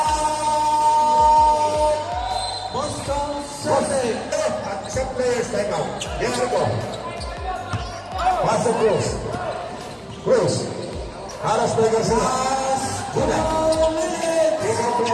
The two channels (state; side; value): identical; both; correlation 1.00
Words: Boston Celtics. At isang players time out. Jericho. Paso Cruz. Aras by Garcia. Una.